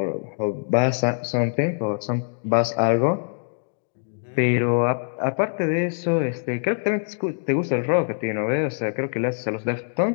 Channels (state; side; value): silent; right; digital silence